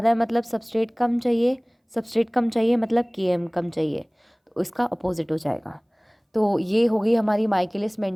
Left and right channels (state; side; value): identical; both; correlation 1.00